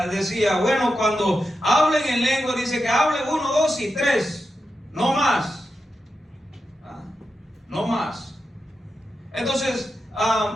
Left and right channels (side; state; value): both; normal; correlation 0.88